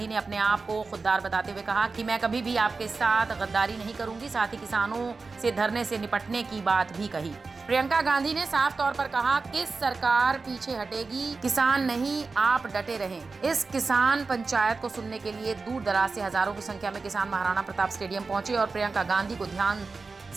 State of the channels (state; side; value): quieter; left; 4.2 dB